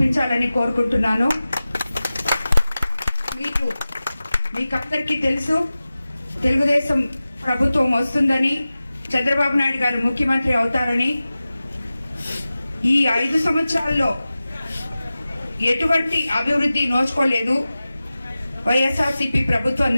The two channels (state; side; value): inverted; both; correlation -0.96